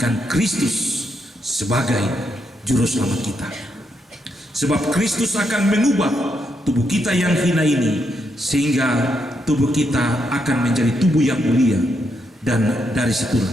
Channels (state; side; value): normal; both; correlation 0.80